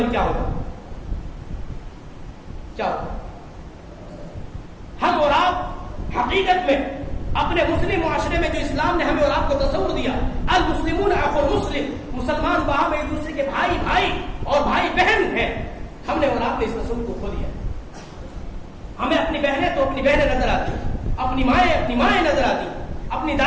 کیا ہوگا؟ کیا ہوگا؟ ہم اور آپ حقیقت میں اپنے مسلم معاشرے میں جو اسلام نے ہمیں اور آپ کو تصور دیا، المسلمون اخو المسلم، مسلمان باہم ایک دوسرے کے بھائی اور بھائی بہن ہیں، ہم نے اور آپ نے اس تصور کو کھو دیا. ہمیں اپنی بہنیں تو اپنی بہنیں نظر آتی، اپنی مائیں نظر آتی، اپنی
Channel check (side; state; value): both; identical; correlation 1.00